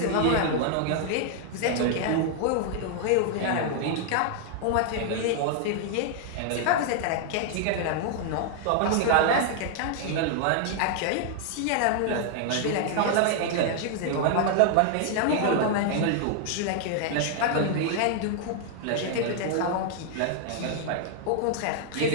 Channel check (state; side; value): different; both; correlation 0.00